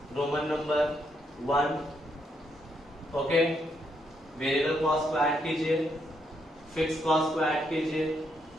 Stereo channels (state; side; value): normal; both; correlation 0.76